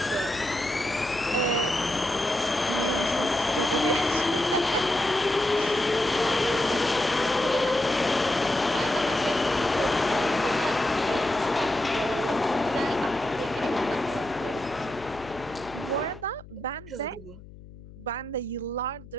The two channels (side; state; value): left; noise; hum, 18 dB below the sound